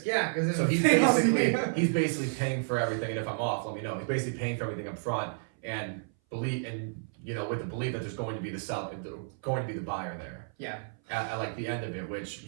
yeah. Because so he's basically paying for everything, and if I'm off, let me know. He's basically paying for everything up front, and with the belief that there's going to be the buyer there. Yeah. At like the end of it, which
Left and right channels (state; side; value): silent; left; 57 dB below the other